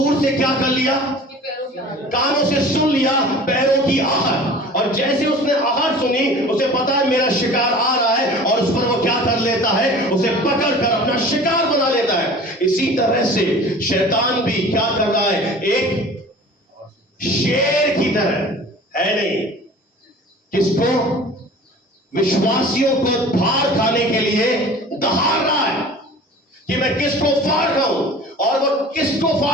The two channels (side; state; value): both; normal; correlation 0.42